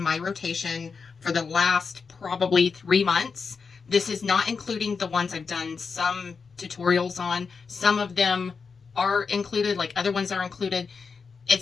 my rotation for the last probably 3 months. This is not including the ones I've done some tutorials on. Some of them are included, like other ones are included.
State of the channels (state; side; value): quieter; right; 5.3 dB